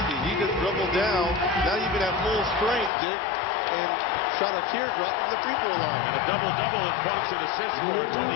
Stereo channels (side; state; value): right; drops out; at 2.9 s